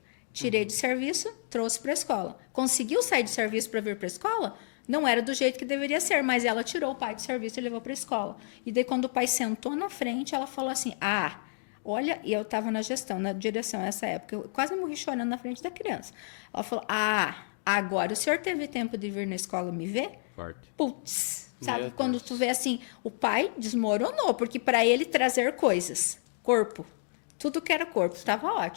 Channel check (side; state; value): right; silent; digital silence